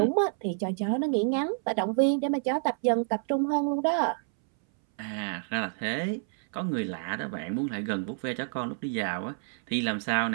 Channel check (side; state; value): left; silent; 59 dB below the other